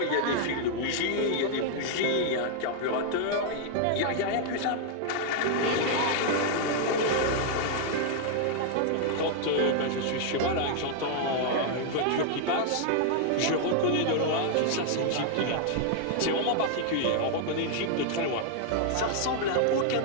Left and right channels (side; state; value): both; different; correlation 0.00